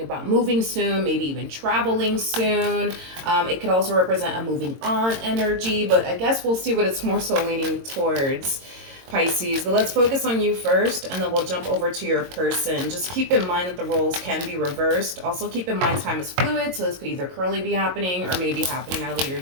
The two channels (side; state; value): left; late; 22 ms